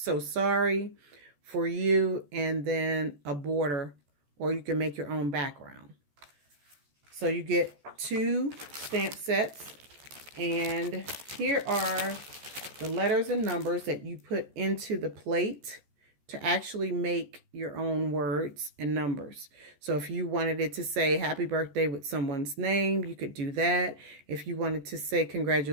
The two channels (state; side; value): late; left; 14 ms